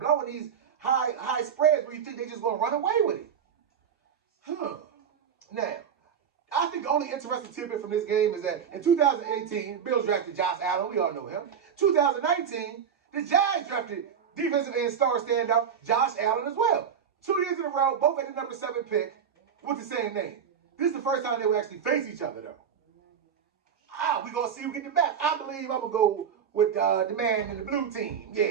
these high spreads where you think they're just going to run away with it. Now, I think the only interesting tidbit from this game is that in 2018, Bills drafted Josh Allen. We all know him. 2019, the Giants drafted defensive end star standout Josh Allen as well. 2 years in a row, both at the number 7 pick with the same name. This is the first time they will actually face each other, though. We're going to see who get the back. I believe I'm going to go with the man in the blue team.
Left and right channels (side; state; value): left; quieter; 7.6 dB